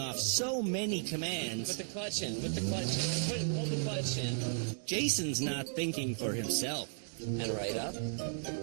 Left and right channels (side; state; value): left; silent; digital silence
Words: so many commands. Put the clutch in, put the clutch in, hold the clutch in. Jason's not thinking for himself. And right up